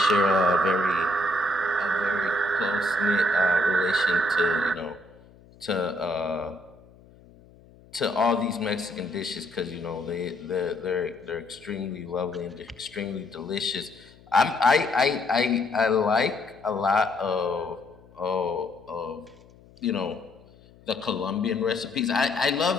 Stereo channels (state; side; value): noise; left; hum, 25 dB below the sound